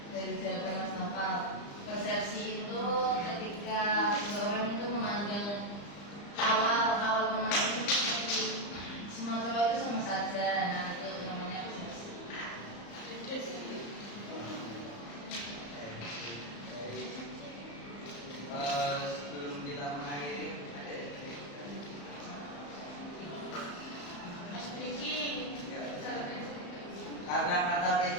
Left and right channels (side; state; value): right; late; 34 ms